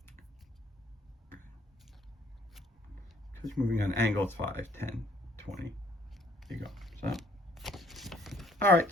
Because moving on angle, it's 5, 10, 20. There you go. So, all right,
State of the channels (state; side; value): normal; both; correlation 0.62